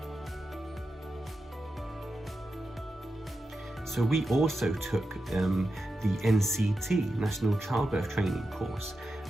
So we also took the NCT, National Childbirth Training course,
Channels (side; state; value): both; normal; correlation 0.90